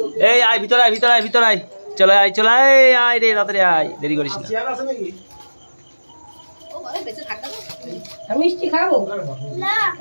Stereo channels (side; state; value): both; inverted; correlation -1.00